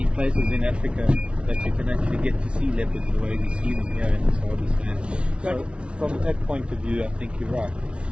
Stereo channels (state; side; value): late; left; 0.059 ms